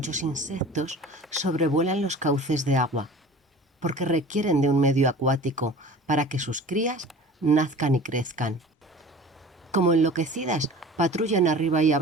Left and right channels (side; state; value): both; normal; correlation 0.41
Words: insectos sobrevuelan los cauces de agua, porque requieren de un medio acuático para que sus crías nazcan y crezcan. Como enloquecidas, patrullan arriba y